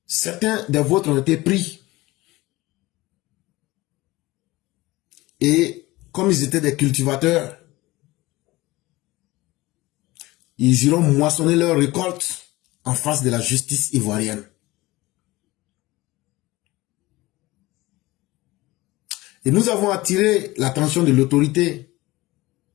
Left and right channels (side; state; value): right; quieter; 19.8 dB